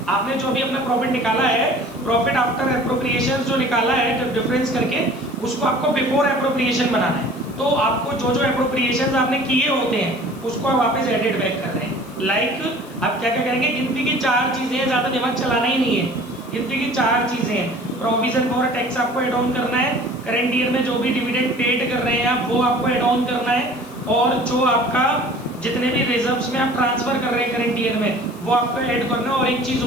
आपने जो भी अपना प्रॉफिट निकाला है, प्रॉफिट आफ्टर एप्रोप्रिएशंस जो निकाला है डिफरेंस करके, उसको आपको बिफोर एप्रोप्रिएशन बनाना है। तो आपको जो जो एप्रोप्रिएशंस आपने किए होते हैं उसको आप वापस एडिट बैक कर रहे हैं। लाइक आप क्या क्या करेंगे, गिनती की 4 चीजें, ज्यादा दिमाग चलाना ही नहीं है, गिनती की 4 चीजें हैं। प्रोविजन फॉर टैक्स आपको एड ऑन करना है, करंट ईयर में जो भी डिविडेंड पेड कर रहे हैं आप वो आपको एड ऑन करना है, और जो आपका जितने भी रिजर्व्स में आप ट्रांसफर कर रहे हैं करंट ईयर में वो आपको ऐड करना है। और एक चीज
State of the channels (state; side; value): noise; left; hiss, 23 dB below the sound